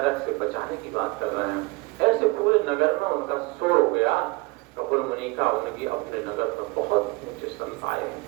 से बचाने की बात कर रहे हैं। ऐसे पूरे नगर में उनका शोर हो गया कपिल मुनि का, उनकी अपने नगर में बहुत ऊंचे संत आए।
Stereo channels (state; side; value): quieter; left; 24.3 dB